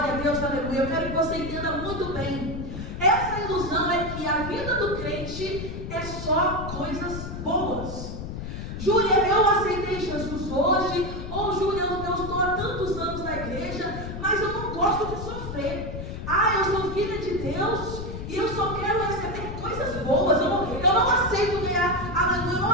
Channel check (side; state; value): left; noise; rumble, 7 dB below the sound